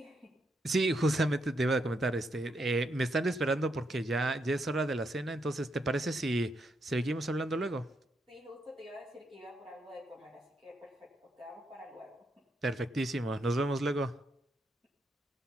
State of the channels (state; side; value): normal; both; correlation 0.79